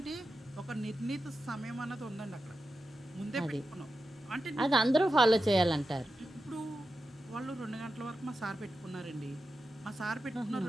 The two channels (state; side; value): normal; both; correlation 0.91